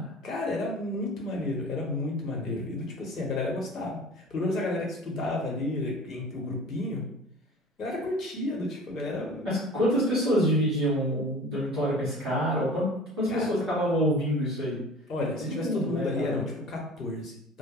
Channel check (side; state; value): both; normal; correlation 0.42